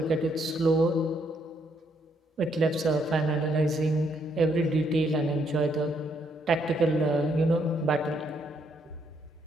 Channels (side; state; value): both; normal; correlation 0.73